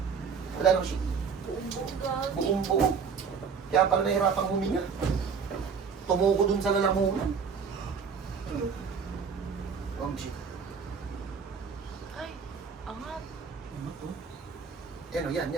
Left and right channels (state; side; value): quieter; left; 6.0 dB